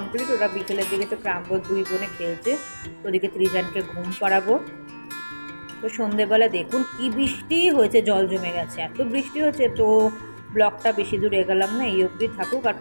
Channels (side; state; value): both; inverted; correlation -1.00